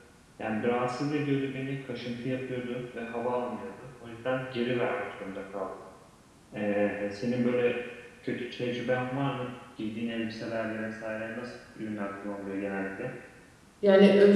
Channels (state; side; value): identical; both; correlation 1.00